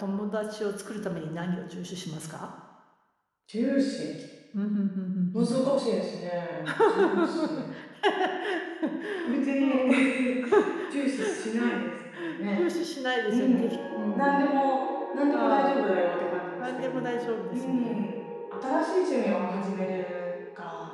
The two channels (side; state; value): both; identical; correlation 1.00